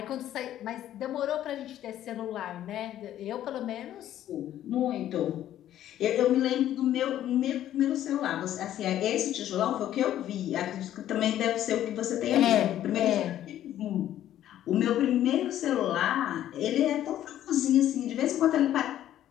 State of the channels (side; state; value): right; quieter; 12.1 dB